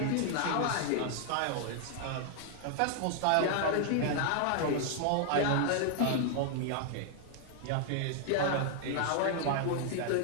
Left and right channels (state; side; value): different; both; correlation 0.00